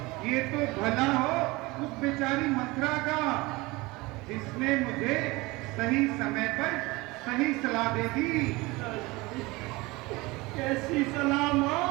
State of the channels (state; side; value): quieter; left; 22.6 dB